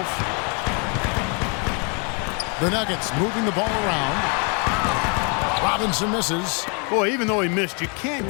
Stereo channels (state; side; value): quieter; right; 36.1 dB